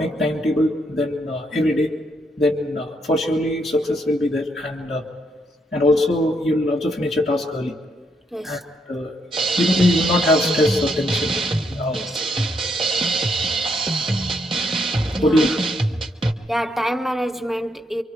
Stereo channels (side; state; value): both; normal; correlation 0.76